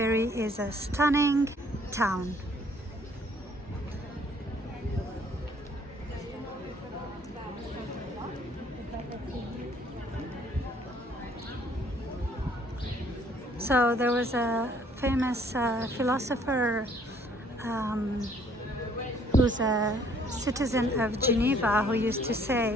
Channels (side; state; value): both; normal; correlation 0.61